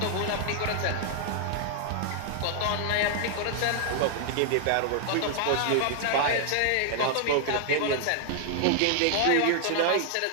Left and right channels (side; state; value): both; different; correlation 0.00